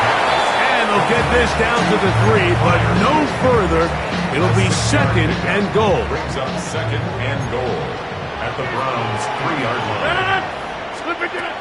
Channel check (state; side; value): identical; both; correlation 1.00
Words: And they'll get this down to the 3, but no further. It'll be 2nd and goal. Brings up 2nd and goal at the Browns' 3-yard line.